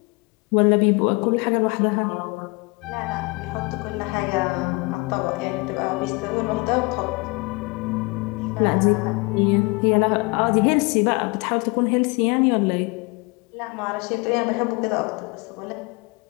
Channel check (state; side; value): quieter; right; 27.9 dB